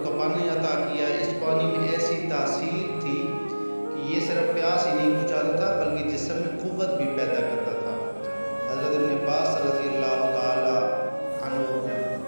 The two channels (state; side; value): inverted; both; correlation -1.00